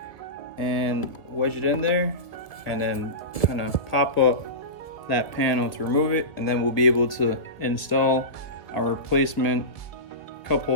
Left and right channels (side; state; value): right; late; 1.4 ms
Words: and wedge it in there, and then kind of pop up that panel to remove it, and then we'll be able to install our replacement cup